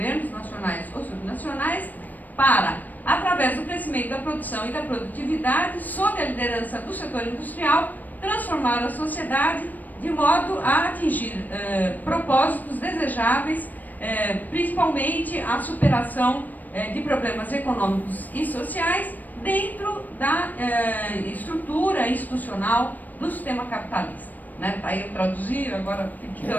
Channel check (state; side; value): late; right; 0.084 ms